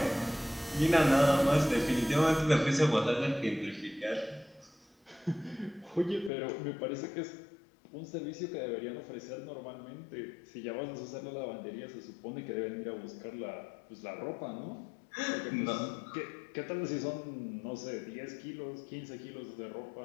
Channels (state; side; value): drops out; right; at 6.3 s